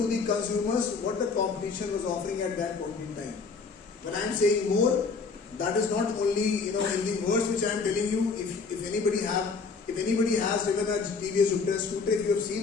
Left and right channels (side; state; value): right; quieter; 4.7 dB